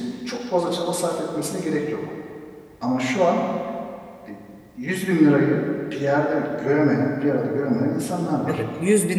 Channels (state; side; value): identical; both; correlation 1.00